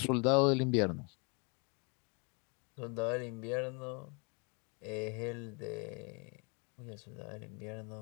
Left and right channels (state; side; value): quieter; right; 33.7 dB